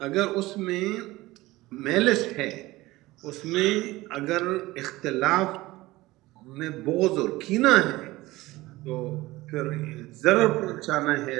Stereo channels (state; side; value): quieter; left; 19.0 dB